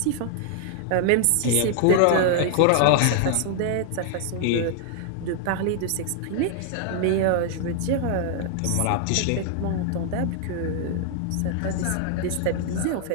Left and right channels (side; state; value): both; different; correlation 0.00